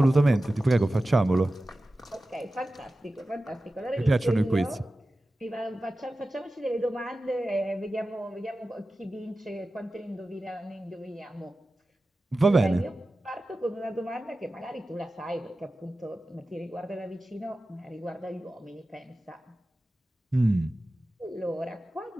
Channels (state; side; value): normal; both; correlation 0.95